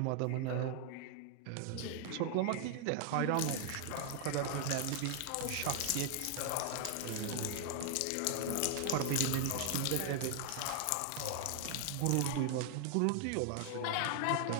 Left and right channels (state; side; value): different; both; correlation 0.00